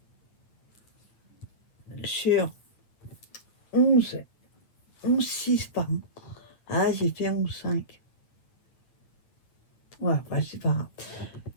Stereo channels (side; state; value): right; late; 9.0 ms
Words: sur 11. 11, 6, pardon. Ah, j'ai fait 11, 5. Ouais, bah, c'est pas grave.